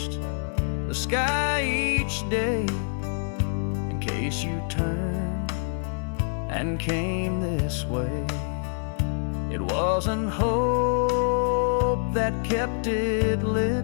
the sky each day, in case you turned and came this way. It wasn't hope that kept it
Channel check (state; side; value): silent; right; digital silence